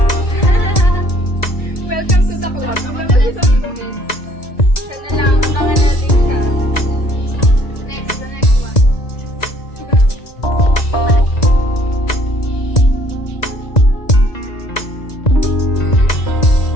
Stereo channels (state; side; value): late; right; 1.9 ms